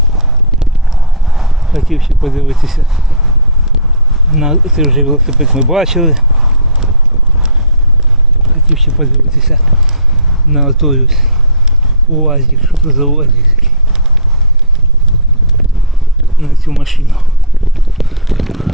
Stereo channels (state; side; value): normal; both; correlation -0.19